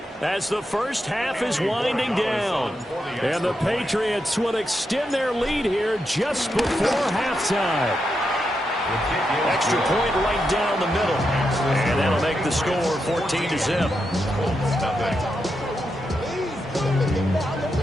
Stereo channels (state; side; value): normal; both; correlation 0.85